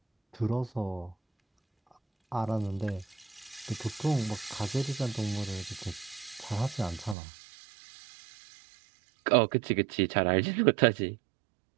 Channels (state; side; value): drops out; left; at 7.2 s